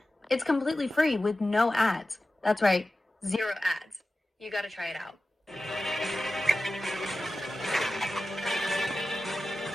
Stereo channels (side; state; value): both; normal; correlation 0.94